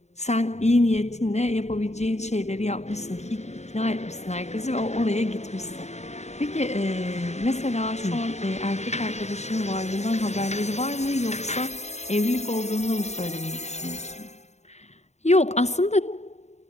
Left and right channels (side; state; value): right; late; 0.32 ms